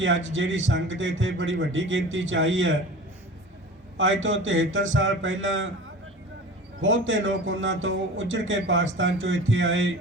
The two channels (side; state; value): both; normal; correlation 0.37